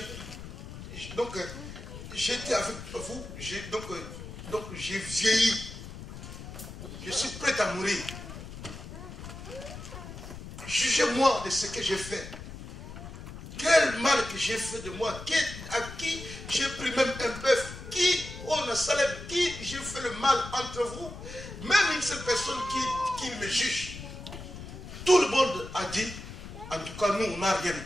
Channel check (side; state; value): left; noise; rumble, 12 dB below the sound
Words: j'étais avec vous, donc j'ai vieilli. Je suis prêt à mourir. Jugez-moi de ce que j'ai fait. Quel mal que j'ai fait de moi. À qui j'ai pris même un bœuf. Qui, qui j'ai fait le mal entre vous. Même une seule personne qui me juge. Tout le monde a dit, en tout cas nous, on n'a rien à